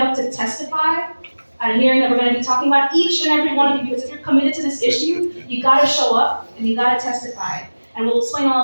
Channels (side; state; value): both; inverted; correlation -1.00